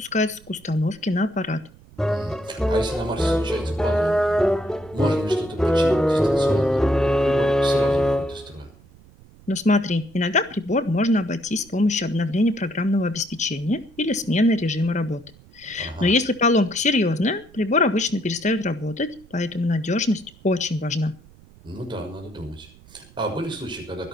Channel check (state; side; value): noise; right; rumble, 25 dB below the sound